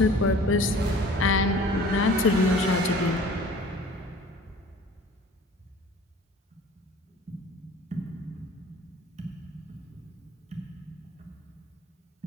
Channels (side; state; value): both; normal; correlation 0.46